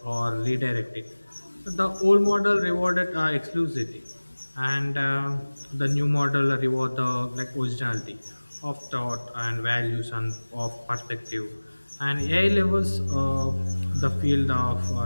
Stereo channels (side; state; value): both; inverted; correlation -1.00